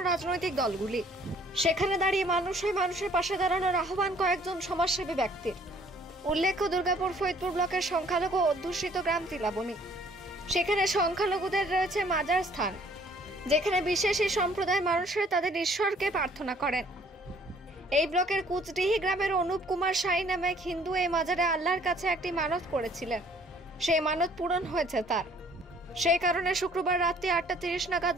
রাজনৈতিক দলগুলি, সেখানে দাঁড়িয়ে মানুষের পাশে দাঁড়ানোর আহ্বান কয়েকজন সমাজসেবী ব্যক্তির। উল্লেখ্য, দুর্গাপুর ফরিদপুর ব্লকের সংখ্যালঘু অধ্যুষিত গ্রাম তিলাবনী। সেখানে সংখ্যালঘুদের রয়েছে মাজার স্থান, যেখানে বিশেষ এই সম্প্রদায়ের মানুষেরা তাদের ঈশ্বরকে প্রার্থনা করেন। এই ব্লকের কুচডিহি গ্রামের অনুপ কুমার সাই নামে এক হিন্দু এই মাজারে আল্লাহর কাছে একটি মানত করেছিলেন। সেই মানত পূরণ হয়েছে তার। সেই কারণে শুক্রবার রাত্রি 8:30 নাগাদ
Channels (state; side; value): normal; both; correlation 0.58